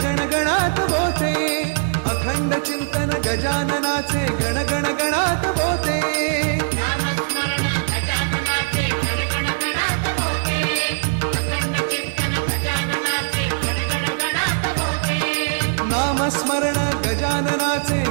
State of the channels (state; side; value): silent; left; digital silence